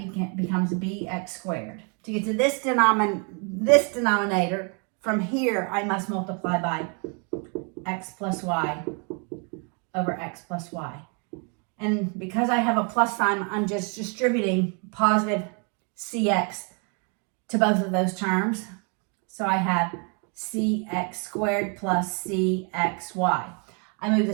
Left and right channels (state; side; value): quieter; left; 37.2 dB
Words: becomes BX squared. To get to this denominator, from here, I must multiply by X plus Y over X plus Y. And because I have a plus sign, I'm just distributing positive CX to both of those terms. So I have CX squared plus CXY. I move the